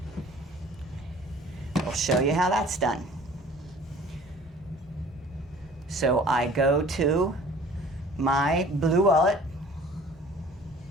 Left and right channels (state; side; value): normal; both; correlation 0.49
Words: I'll show you how that's done. So I go to my Blue Wallet.